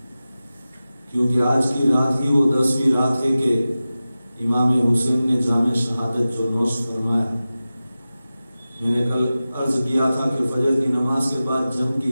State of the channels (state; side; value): inverted; both; correlation -0.95